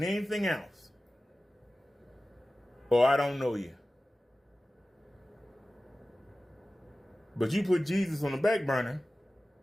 anything else, or I don't know you. But you put Jesus on the back burner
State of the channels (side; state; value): both; normal; correlation 0.96